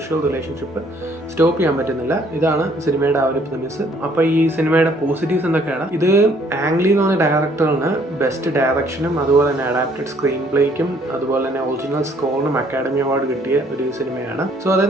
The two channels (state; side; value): normal; both; correlation 0.62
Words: റിലേഷൻഷിപ്പ് സ്റ്റോപ്പ് ചെയ്യാൻ പറ്റുന്നില്ല. ഇതാണ് സിനിമയുടെ ആ ഒരു പ്രിമിസ്. അപ്പോൾ ഈ സിനിമയുടെ പോസിറ്റീവ്സ് എന്തൊക്കെയാണ്? ഇത് ആങ് ലീ എന്ന് പറഞ്ഞ ഡയറക്ടറിന് ബെസ്റ്റ് ഡയറക്ഷനും അതുപോലെ തന്നെ അഡാപ്റ്റഡ് സ്ക്രീൻ പ്ലേക്കും അതുപോലെ തന്നെ ഒറിജിനൽ സ്കോറിനും അക്കാഡമി അവാർഡ് കിട്ടിയ ഒരു സിനിമയാണ്. സോ